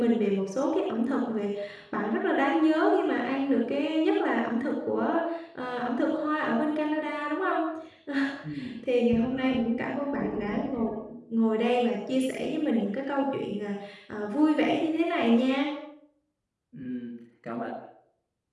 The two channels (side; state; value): both; identical; correlation 1.00